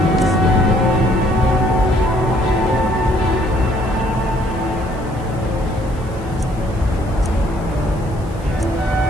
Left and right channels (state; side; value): noise; left; hiss, 26 dB below the sound